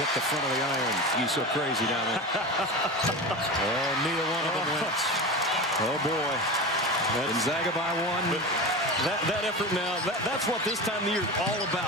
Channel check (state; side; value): normal; both; correlation 0.27